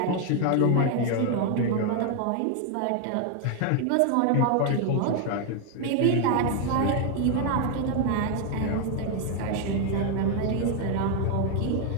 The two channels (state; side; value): different; both; correlation 0.01